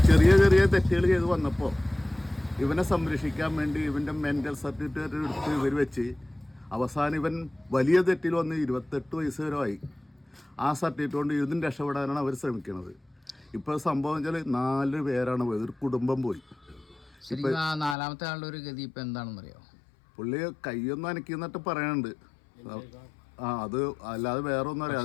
ചെറിയ ചെറിയ തെറ്റുകൾ ചെയ്ത് വന്നപ്പോൾ ഇവനെ സംരക്ഷിക്കാൻ വേണ്ടി ഇവൻ്റെ മെൻ്റൽ സർട്ടിഫിക്കറ്റ് എടുത്ത് ഇവർ വെച്ച് അവസാനം ഇവൻ വലിയ തെറ്റിൽ വന്ന് 28 വയസ്സ് വരെ ആയി. ആ സർട്ടിഫിക്കറ്റ് കൊണ്ട് ഇതിന് രക്ഷപ്പെടാനാണ് അവർ ശ്രമിക്കുന്നത്. ഇപ്പോൾ സംഭവം വെച്ചാൽ 4 പേരാണ് പോയത്, ഒരു കുടുംബം പോയി. നാലാമത്തെ ആളുടെ ഒരു ഗതി ഇപ്പം എന്താണെന്നറിയോ? പുള്ളി കൈയൊന്നും അനക്കിന്നിട്ട് പറയാനുണ്ട്. അത് അല്ലാതെ വേറെ ഒന്നും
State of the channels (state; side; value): drops out; right; at 17.9 s